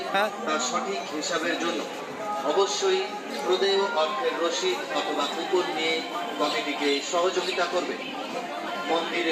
তার সঠিক হিসাবের জন্য অবশ্যই প্রদেয় অর্থের রসিদ অথবা কুপন নিয়ে কমিটিকে সহযোগিতা করবে।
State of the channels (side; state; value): both; identical; correlation 1.00